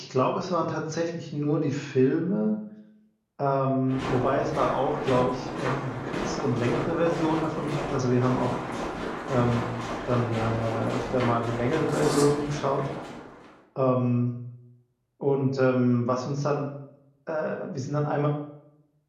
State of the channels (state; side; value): identical; both; correlation 1.00